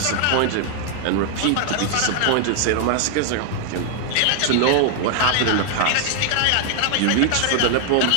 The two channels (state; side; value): different; both; correlation 0.00